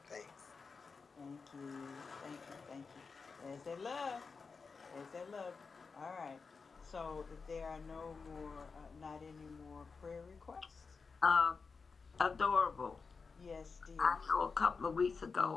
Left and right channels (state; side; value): quieter; right; 4.9 dB